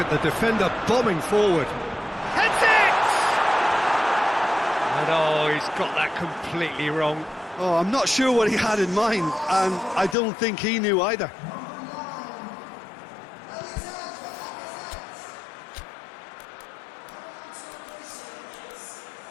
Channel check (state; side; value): drops out; right; at 10.2 s